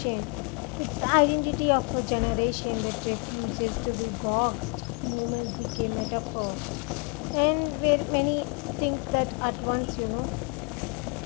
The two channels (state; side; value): quieter; right; 33.7 dB